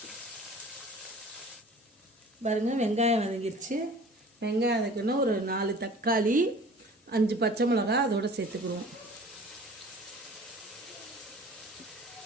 பாருங்கள், வெங்காயம் வதங்கிருச்சு. வெங்காயம் வதக்கணும். ஒரு 4 தக்காளி, 5 பச்சை மிளகா அதோடு சேர்த்துக்குருவோம்.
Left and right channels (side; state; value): both; normal; correlation 0.46